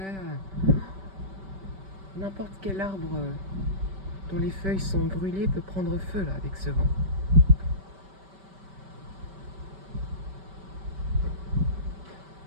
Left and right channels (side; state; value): left; late; 5.2 ms